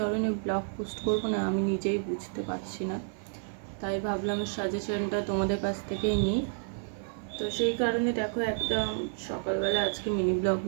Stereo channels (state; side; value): silent; left; 58 dB below the other